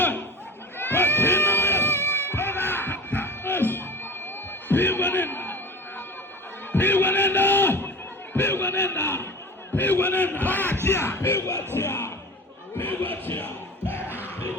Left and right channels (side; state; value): both; normal; correlation 0.35